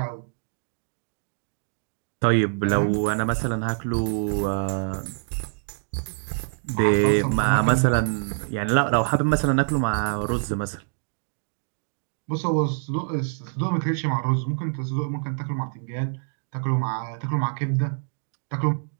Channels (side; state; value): left; silent; digital silence